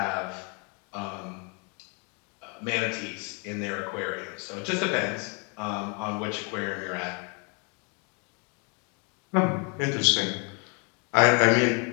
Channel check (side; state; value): right; quieter; 33.7 dB